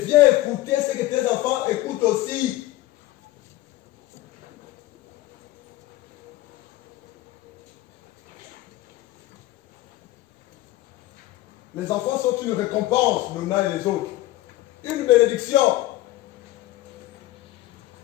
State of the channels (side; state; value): right; quieter; 16.4 dB